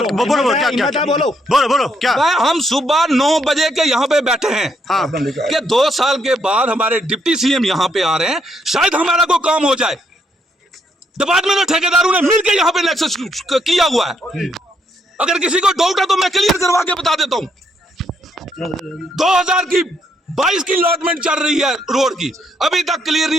बोलो क्या बोलो क्या? हम सुबह 9 बजे के यहाँ पे बैठे हैं कि 2 साल के बाद हमारे डिप्टी सीएम यहाँ पे आ रहे हैं, शायद हमारा कोई काम हो जाए। डिपार्टमेंट और ठेकेदारों ने मिलकर यहाँ पे नेक्सस किया हुआ है। अगर किसी को डाउट है तो मैं क्लियर करवा के बता देता हूँ। 2022 की अलॉटमेंट चल रही है रोड की, अभी तक क्लियर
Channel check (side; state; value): both; normal; correlation 0.74